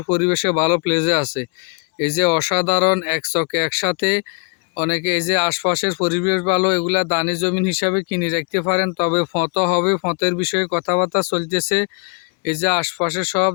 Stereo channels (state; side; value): quieter; right; 35.5 dB